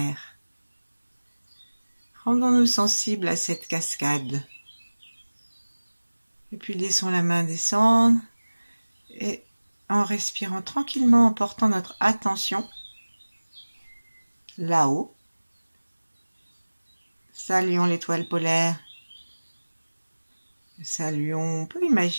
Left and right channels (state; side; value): inverted; both; correlation -1.00